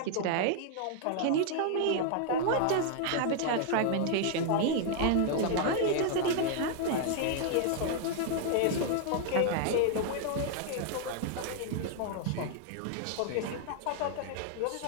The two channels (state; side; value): different; both; correlation 0.00